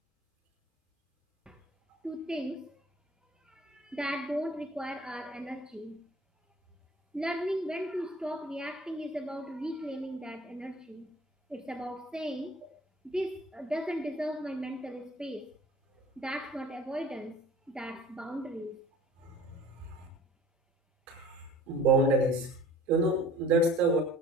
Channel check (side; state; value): both; normal; correlation 0.48